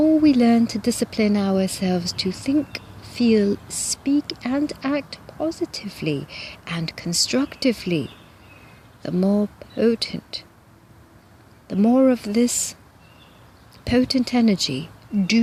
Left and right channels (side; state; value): both; identical; correlation 1.00